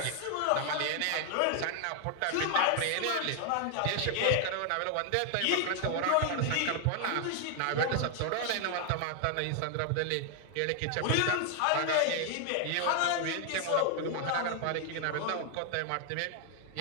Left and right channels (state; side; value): different; both; correlation 0.00